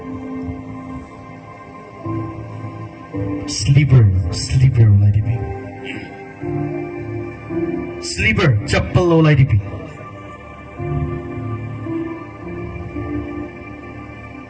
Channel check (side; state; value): both; identical; correlation 1.00